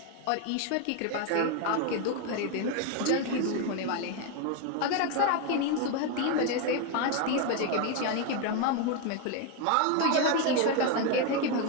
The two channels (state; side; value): different; both; correlation 0.02